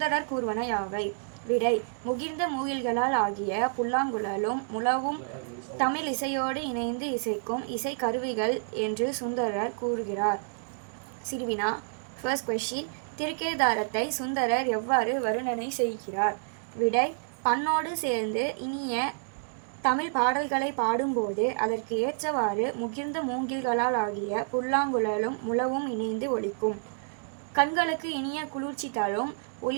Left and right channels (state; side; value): silent; left; digital silence